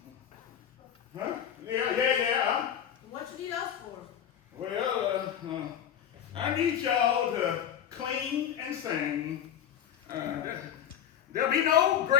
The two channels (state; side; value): quieter; right; 9.5 dB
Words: Huh? Yeah. What you need us for? Well, I need y'all to clean and sing. There'll be no